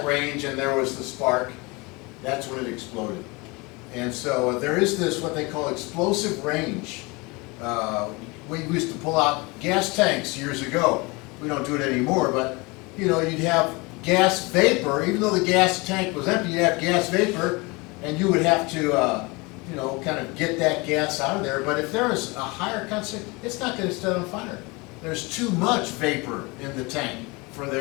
range and there was the spark, that's when it exploded. And so there is this, what they call explosive range. We used to pull out gas tanks years ago. We don't do it anymore, but you know, you'd have gas vapor. Even though the gas tank was empty, you'd have gas vapor, and you would have to you know, kind of get that gas out of there. But if there is a higher concentration, it's not going to set on fire. There's too much vapor in the tank for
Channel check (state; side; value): quieter; right; 26.1 dB